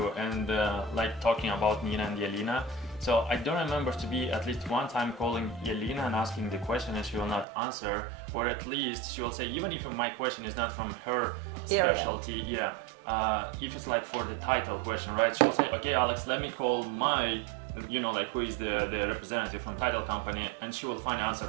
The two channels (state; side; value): drops out; left; at 7.5 s